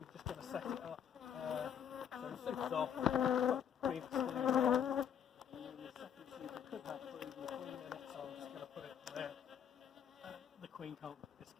just going to set it up. So the super's off, queen exclusion on, and then the second super could have brood and the queen in it, so I'm just going to put it there. The queen can't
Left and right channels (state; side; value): quieter; right; 8.6 dB